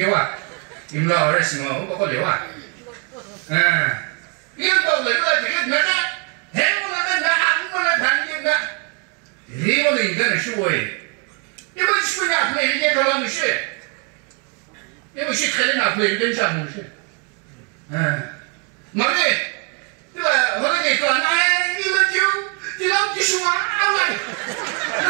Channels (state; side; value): quieter; left; 34.3 dB